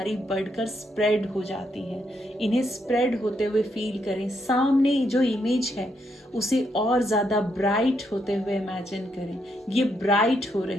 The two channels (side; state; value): both; normal; correlation 0.77